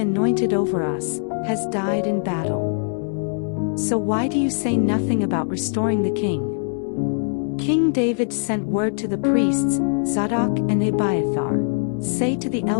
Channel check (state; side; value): silent; right; 62 dB below the other